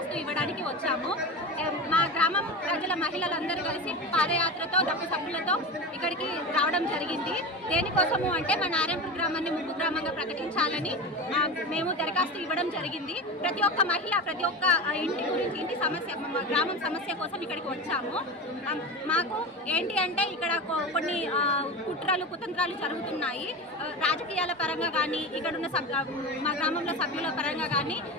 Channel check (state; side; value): normal; both; correlation 0.26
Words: ఇవ్వడానికి వచ్చాము. మా గ్రామం ప్రజల మహిళలందరూ కలిసి పాదయాత్రతో డప్పు సభ్యులతో ఇక్కడికి రావడం జరిగింది. దేనికోసము అంటే మా నారాయణపూర్ గ్రామాన్ని ముంపు గ్రామంగా ప్రకటించాలని మేము దరఖాస్తు ఇవ్వడం జరిగింది. ప్రతి ఒక్క మహిళ ప్రతి ఒక్క ఇంటి గురించి ఇంటి సమస్య గ్రామం సమస్య కోసం ఇక్కడికి వచ్చాము. మాకు ఏంటి అంటే ఇక్కడ కొన్ని కుట్రలు కుతంత్రాలు జరుగుతున్నాయి. రాజకీయాల పరంగా కానీ ఇక్కడున్న మా గ్రామంలో సభ్యుల పరంగా కానీ